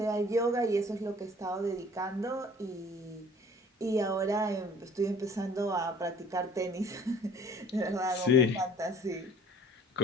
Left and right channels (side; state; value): both; normal; correlation 0.52